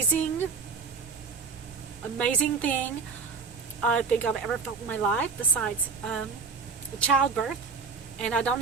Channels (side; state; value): left; quieter; 4.9 dB